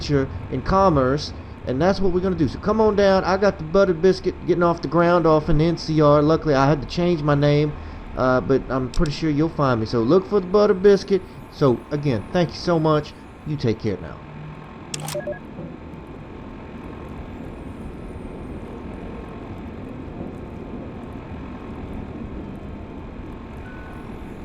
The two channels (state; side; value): identical; both; correlation 1.00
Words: in commerce, and that's what we're going to do. So come on down. I got the Buttered Biscuit getting off the ground off in the NCR. Luckily, I had to change my name. But I'm pretty sure you'll find me. So look for the Butter Biscuit. So again, thank you so much. You take care now.